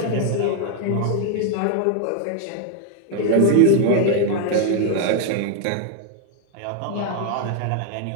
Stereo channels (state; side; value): different; both; correlation 0.00